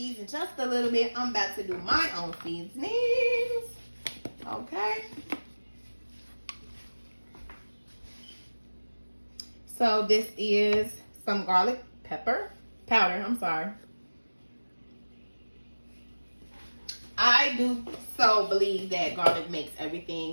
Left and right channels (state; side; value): inverted; both; correlation -1.00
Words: just a little bit, I'm about to do my own seasonings, okay? So this is some garlic pepper powder, I'm sorry. I do so believe that garlic makes